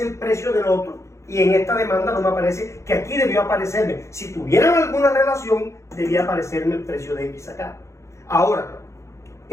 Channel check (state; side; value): late; right; 0.14 ms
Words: el precio del otro y en esta demanda no me aparece, que aquí debió aparecerme. Si tuvieran alguna relación, debía aparecerme el precio de X acá. Ahora,